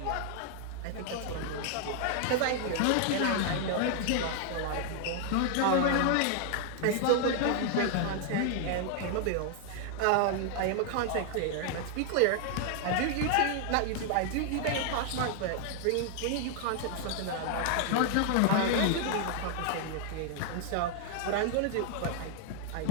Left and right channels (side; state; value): both; different; correlation 0.00